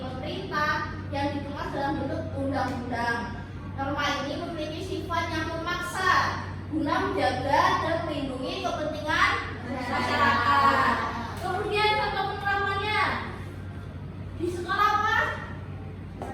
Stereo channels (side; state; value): both; identical; correlation 1.00